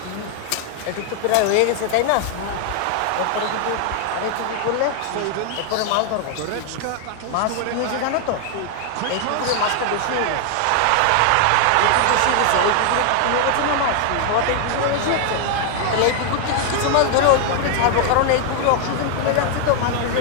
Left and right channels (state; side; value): different; both; correlation 0.00